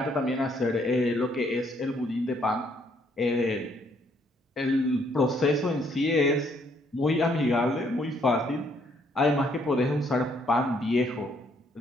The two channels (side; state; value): both; normal; correlation 0.68